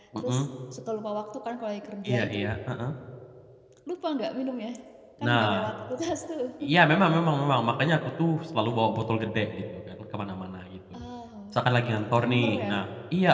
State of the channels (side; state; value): both; identical; correlation 1.00